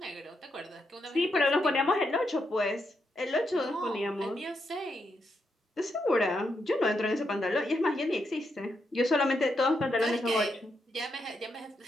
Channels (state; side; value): normal; both; correlation 0.81